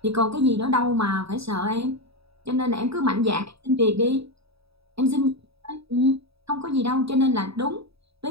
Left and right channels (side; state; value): left; late; 0.77 ms